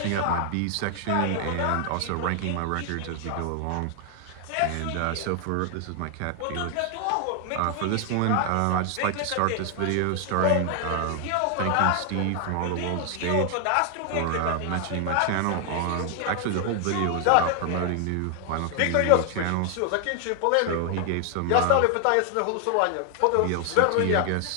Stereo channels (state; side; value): different; both; correlation 0.00